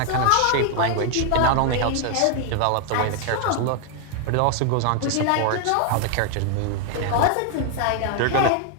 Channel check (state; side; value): different; both; correlation 0.00